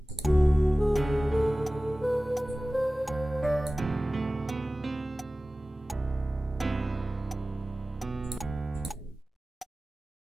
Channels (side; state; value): both; normal; correlation 0.97